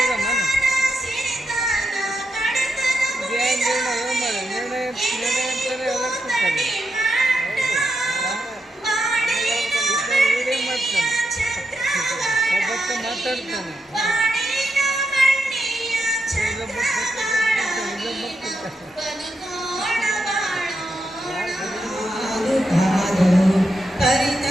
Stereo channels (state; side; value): normal; both; correlation 0.84